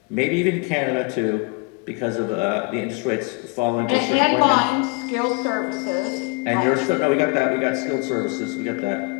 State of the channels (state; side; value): quieter; right; 29.6 dB